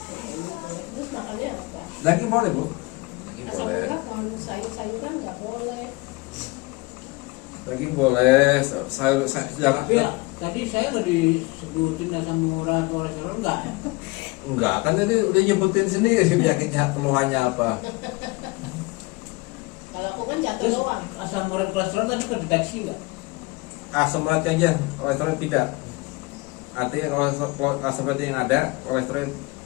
Terus makannya apa? Daging boleh, Bu. Daging Asam boleh. urat, kalau sayur-sayuran nggak boleh. Daging boleh. Sayur jangan. Tapi ya, tadi saya nggak disebutin asam urat kolesterol enggak? Enggak, kan tadi udah nyebutin sendiri penyakitnya, keluhannya apa. Kalau aku kan jatuh Terus doang. asam urat kolesterol tadi kedeteksi nggak? Asam urat aja, kolesterol tidak. Artinya kalau asam urat yang ada, kolesterol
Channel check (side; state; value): right; quieter; 24.8 dB